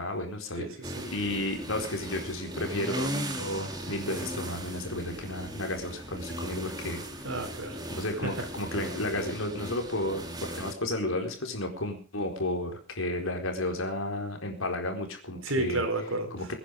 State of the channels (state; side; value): normal; both; correlation 0.06